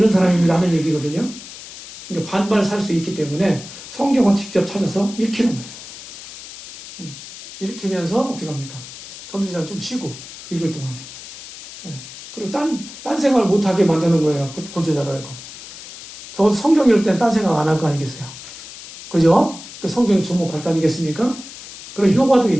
사람입니다 하는 얘기거든요. 그러니까 반발 살 수 있기 때문에 성경을 직접 찾아서 읽히는 거예요. 읽히면서 어떻게 합니까? 전도자는 좀 쉬고 읽을 동안에. 네. 그리고 딴 생각을 못하게 만드는 거예요. 구조자라고. 저 성경 읽을 땐 딴 생각 안 할 거 아니겠어요? 그죠? 그 성경에 주목할 거 아니겠습니까? 그런 효과도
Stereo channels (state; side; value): noise; left; hiss, 14 dB below the sound